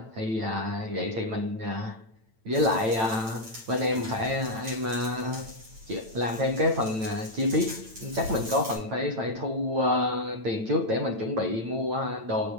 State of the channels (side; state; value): left; late; 9.0 ms